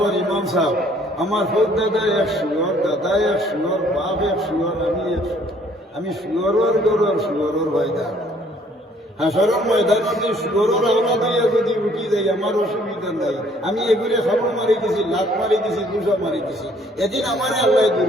ইমাম সাহেব আমার ফোক দাদা এক শুয়োর দাদা এক শুয়োর বাপ এক শুয়োর আমি শুয়োরের গরুর শুয়োরের ভয়দা হাসরের ময়দানে শুয়োরের আওলা দিয়ে যদি উঠি যাই আমার অসুবিধা নাই আমি এগুলো খাবর মারি দিছি লাখ মারি দিছি 200 মারি দিছি এদিন আমার আল্লাহ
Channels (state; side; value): normal; both; correlation 0.61